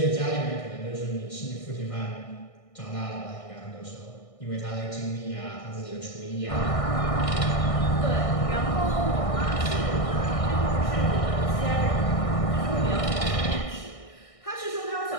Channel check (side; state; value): right; late; 1.6 ms